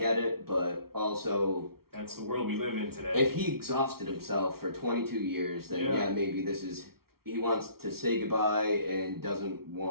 it, but also. That's the world we live in today. If he exhausted himself for 22 years, then maybe this is. He wants to say goodbye and doesn't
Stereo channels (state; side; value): late; left; 0.94 ms